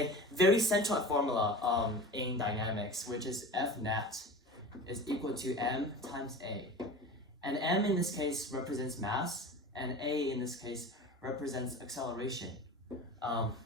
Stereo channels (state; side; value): normal; both; correlation 0.34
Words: very central formula in dynamics, which is F net is equal to m times a. And m in this case represents mass, and a in this case represents acceleration